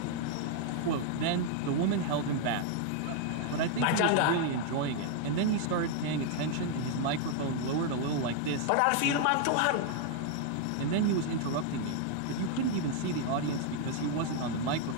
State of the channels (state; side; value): different; both; correlation 0.00